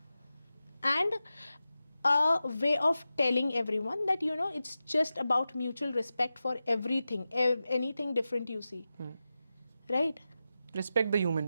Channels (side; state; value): both; inverted; correlation -0.93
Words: a way of telling everyone that you know it's just about mutual respect for everything, anything different you see. Right? Respect the